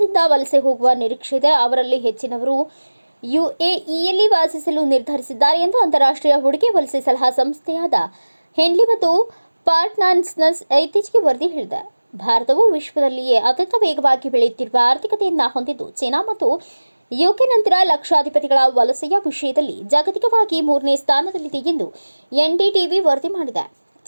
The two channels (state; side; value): inverted; both; correlation -1.00